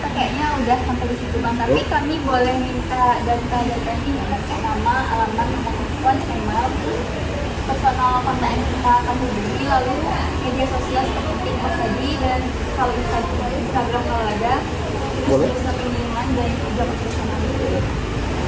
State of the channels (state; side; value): identical; both; correlation 1.00